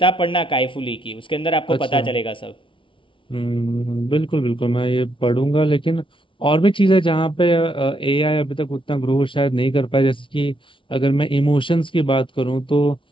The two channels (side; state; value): right; late; 0.25 ms